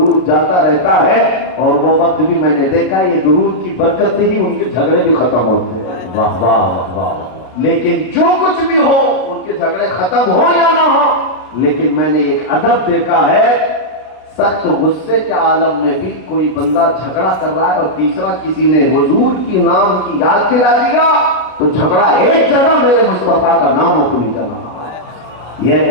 جاتا رہتا ہے، اور وہ وقت بھی میں نے دیکھا یہ درود کی برکت سے ہی ان کے جھگڑے بھی ختم ہوتے ہیں۔ واہ واہ واہ واہ۔ لیکن جو کچھ بھی ہو، ان کے جھگڑے ختم ہو یا نہ ہو، لیکن میں نے ایک ادب دیکھا ہے، سخت غصے کے عالم میں بھی کوئی بندہ جھگڑا کر رہا ہے اور تیسرا کسی نے حضور کی نام کی یاد دلا دیا تو جھگڑا ایک جگہ میرے مصطفیٰ کا نام اپنی جگہ۔ یہ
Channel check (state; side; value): late; right; 32 ms